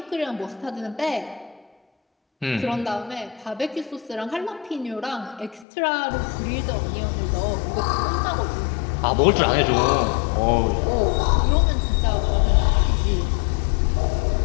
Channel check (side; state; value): right; drops out; at 5.7 s